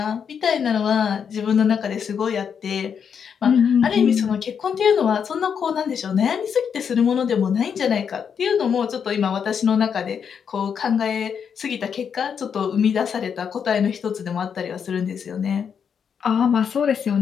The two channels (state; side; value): quieter; right; 7.2 dB